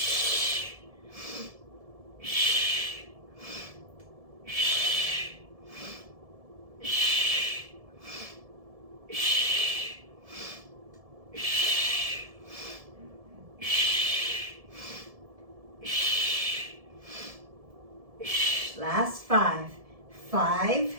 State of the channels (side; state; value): left; late; 1.7 ms